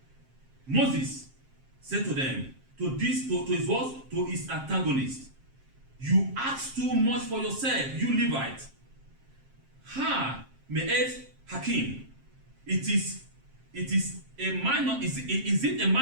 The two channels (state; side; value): late; left; 7.5 ms